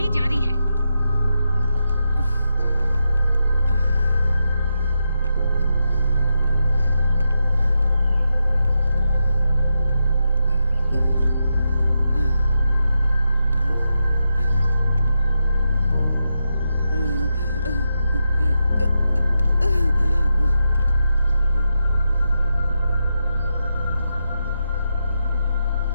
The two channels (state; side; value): inverted; both; correlation -0.86